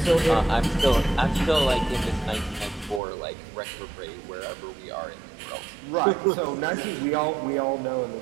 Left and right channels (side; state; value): left; drops out; at 3.0 s